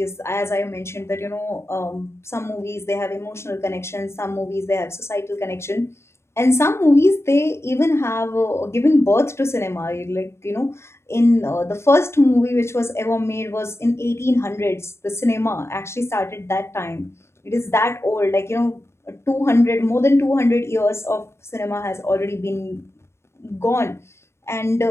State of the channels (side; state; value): right; late; 0.13 ms